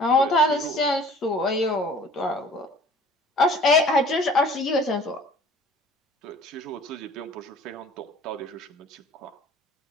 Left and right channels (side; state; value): both; normal; correlation 0.49